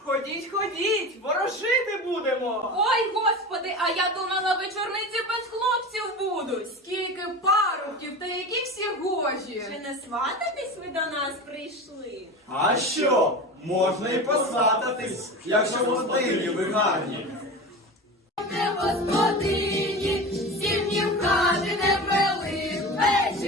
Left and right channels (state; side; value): normal; both; correlation 0.29